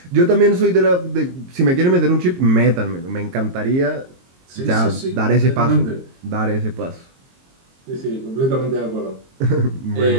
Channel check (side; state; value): left; late; 22 ms